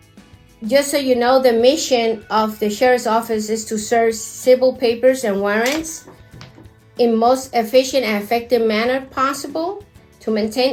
just so you know, the mission of the sheriff's office is to serve civil papers and warrants in most efficient and effective manner possible, to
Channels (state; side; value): identical; both; correlation 1.00